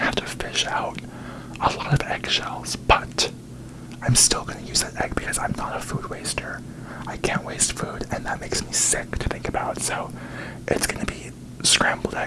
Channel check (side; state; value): both; identical; correlation 1.00